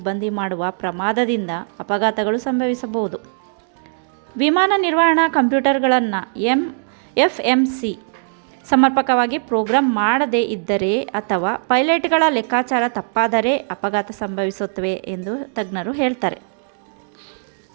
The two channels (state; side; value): silent; left; digital silence